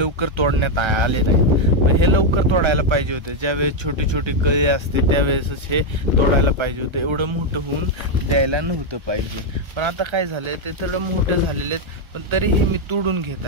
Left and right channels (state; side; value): late; left; 1.4 ms